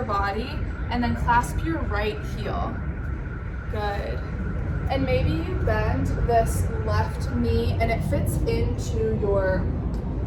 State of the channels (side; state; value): both; identical; correlation 1.00